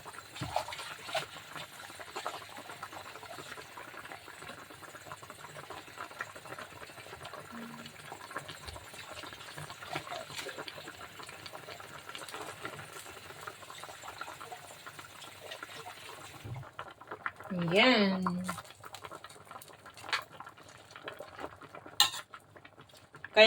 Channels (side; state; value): both; identical; correlation 1.00